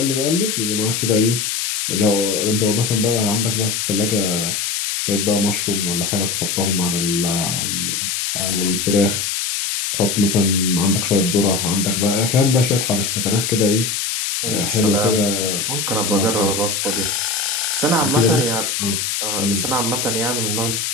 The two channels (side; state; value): left; noise; hiss, 1 dB below the sound